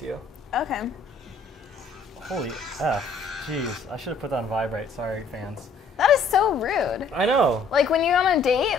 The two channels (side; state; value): right; quieter; 3.9 dB